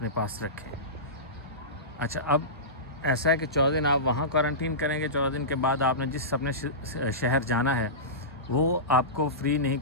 पास रखें। अच्छा, अब ऐसा है कि 14 दिन आप वहाँ क्वारंटीन करेंगे। 14 दिन के बाद आपने जिस अपने शहर जाना है वो आपको फ्री नहीं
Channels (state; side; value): normal; both; correlation -0.20